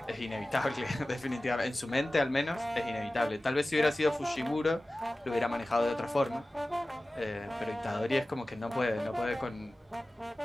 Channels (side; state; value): both; normal; correlation 0.96